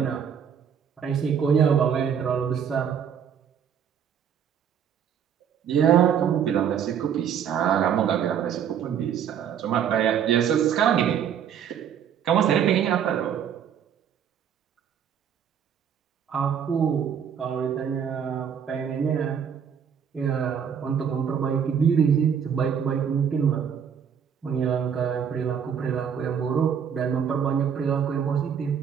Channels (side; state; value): left; quieter; 8.1 dB